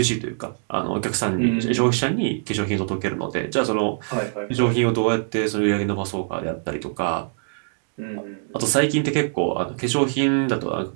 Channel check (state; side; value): silent; left; digital silence